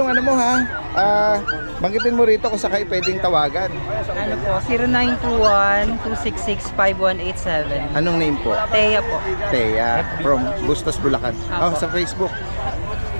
ano mo, ha? Banggitin mo rito kung sakay pwedeng tawagan. Ano po, 0921-266-5187. Anong name po? Teya po. Teya, from Bustos, Bulacan. Oh, sa Facebook.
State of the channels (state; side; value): inverted; both; correlation -1.00